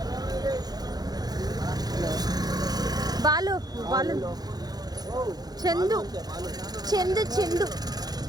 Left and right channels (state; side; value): late; left; 0.19 ms